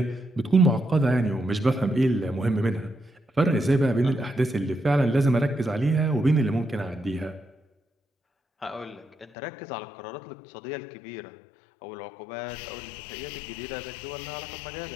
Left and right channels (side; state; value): right; drops out; at 9.3 s